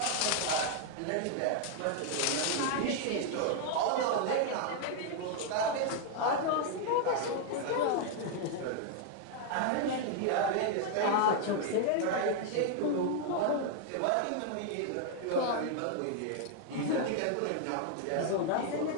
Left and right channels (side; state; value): both; different; correlation 0.00